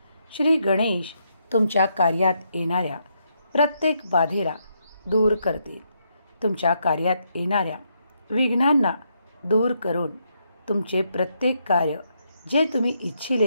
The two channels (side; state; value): both; inverted; correlation -0.78